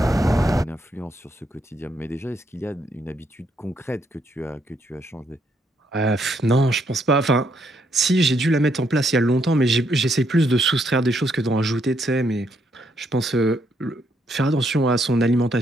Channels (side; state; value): both; normal; correlation 0.74